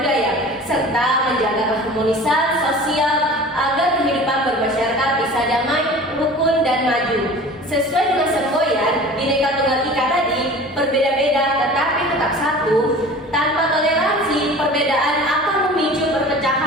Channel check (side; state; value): both; normal; correlation 0.41